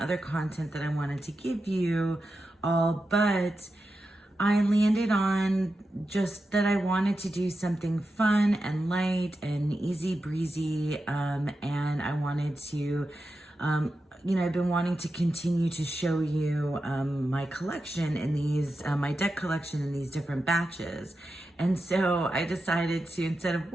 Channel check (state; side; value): normal; both; correlation 0.90